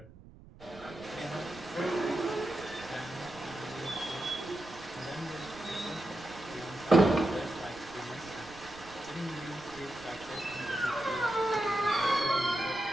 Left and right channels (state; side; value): noise; right; rumble, 20 dB below the sound